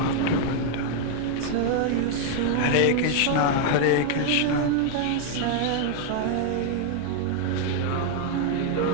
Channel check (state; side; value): different; both; correlation 0.00